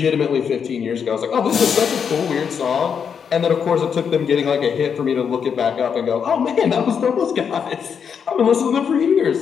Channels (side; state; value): right; quieter; 7.0 dB